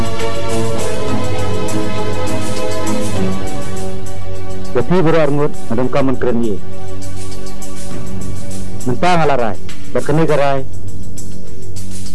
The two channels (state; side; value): identical; both; correlation 1.00